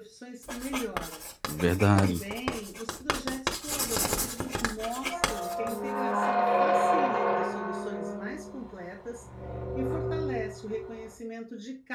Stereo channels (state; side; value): identical; both; correlation 1.00